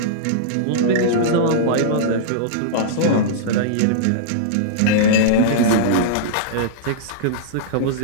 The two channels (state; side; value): different; both; correlation -0.03